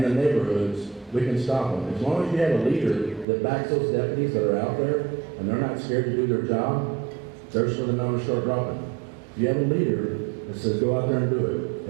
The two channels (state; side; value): drops out; left; at 3.2 s